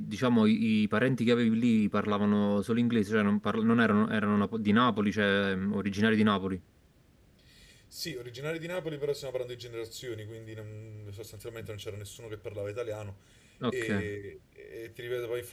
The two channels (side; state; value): both; identical; correlation 1.00